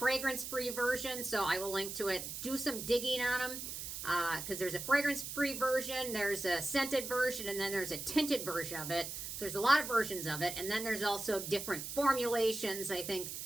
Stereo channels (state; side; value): noise; right; hiss, 7 dB below the sound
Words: version, so I will link to it. Do some digging on them, because there's a fragrance-free version, there's a scented version, and then there's a tinted version of it. So there's a lot of versions of it, and then there's also different formulations, I think.